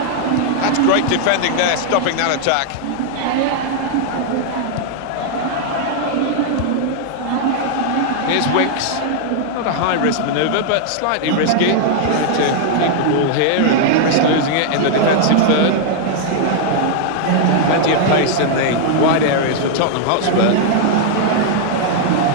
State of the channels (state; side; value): different; both; correlation 0.00